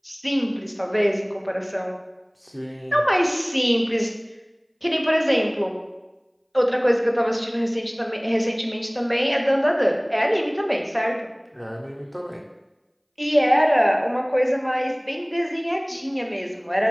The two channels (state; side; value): identical; both; correlation 1.00